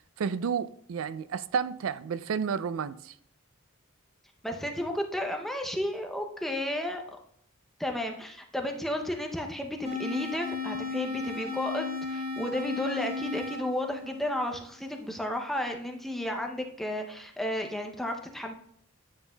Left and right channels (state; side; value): normal; both; correlation 0.43